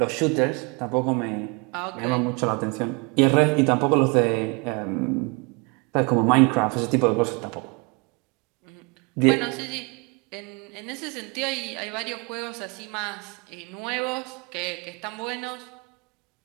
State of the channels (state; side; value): quieter; left; 30.4 dB